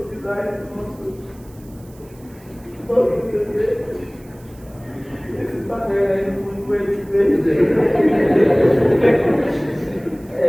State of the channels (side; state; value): right; noise; hiss, 27 dB below the sound